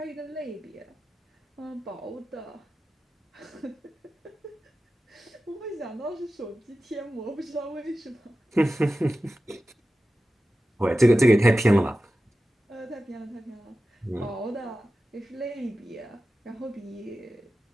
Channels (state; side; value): normal; both; correlation 0.94